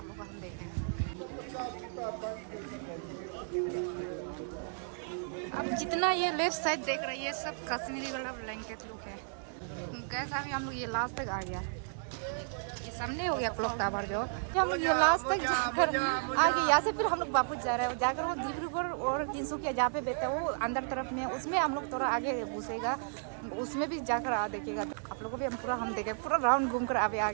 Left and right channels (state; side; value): silent; left; 55 dB below the other